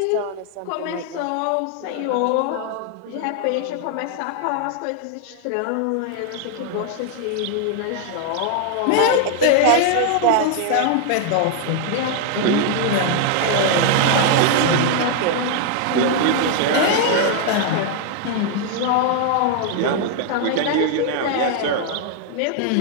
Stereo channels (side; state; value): both; different; correlation 0.00